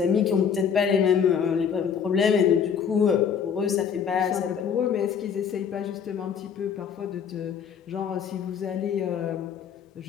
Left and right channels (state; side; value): quieter; right; 7.3 dB